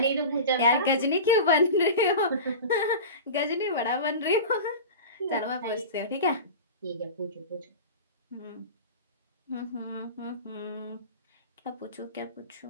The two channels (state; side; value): inverted; both; correlation -0.30